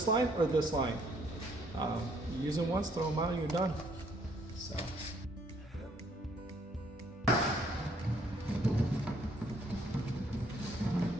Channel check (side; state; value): both; normal; correlation 0.66